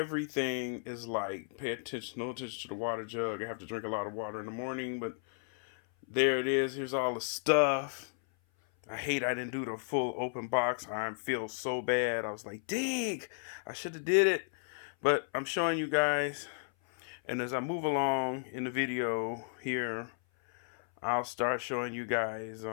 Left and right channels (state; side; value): silent; right; 55 dB below the other